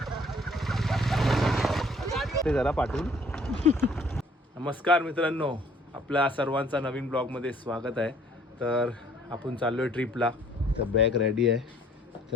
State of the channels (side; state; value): both; normal; correlation 0.59